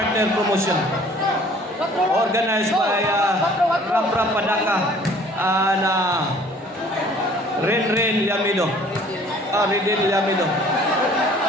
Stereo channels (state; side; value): normal; both; correlation 0.53